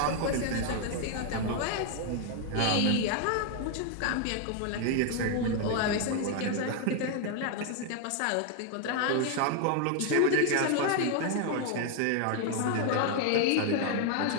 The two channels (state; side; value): different; both; correlation 0.01